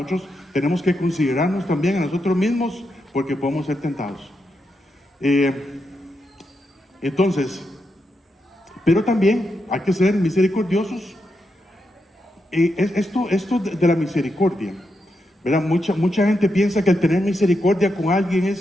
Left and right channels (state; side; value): normal; both; correlation 0.84